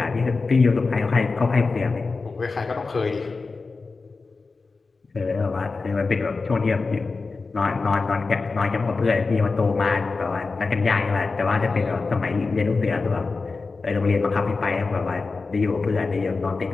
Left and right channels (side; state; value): right; quieter; 4.1 dB